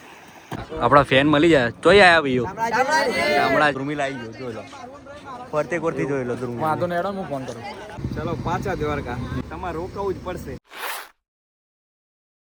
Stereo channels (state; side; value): identical; both; correlation 1.00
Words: આપણા ફેન મળી જાય તોય આયા ભાઈઓ હમણાં ધ્રુમિલ આવી ગયો જોઈ લો ફરતે કોરથી જોઈ લો ધ્રુમિલ વાંધો ને એડો હું ફોન કરું. ચલો પાછા દ્વારકા તમારે રોકાવું જ પડશે.